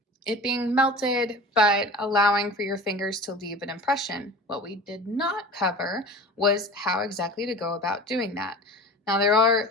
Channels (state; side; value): normal; both; correlation 0.37